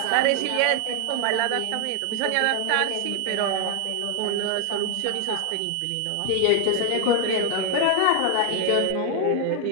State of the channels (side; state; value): both; different; correlation 0.01